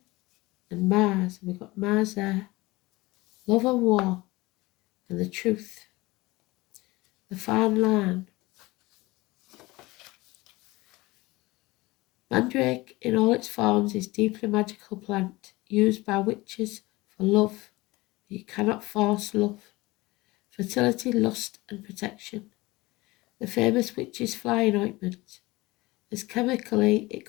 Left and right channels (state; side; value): quieter; right; 21.0 dB